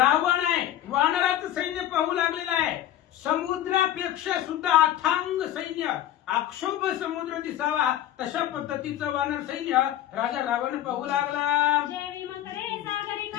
आहे. वानराचं सैन्य पाहू लागलेलं आहे. समुद्रापेक्षा सुद्धा अथांग सैन्य अक्षोभ समुद्र दिसावा तशा पद्धतीचं वानर सैन्य राजा रावण पाहू लागला. जेवी मकरे सागरी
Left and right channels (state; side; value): quieter; right; 12.4 dB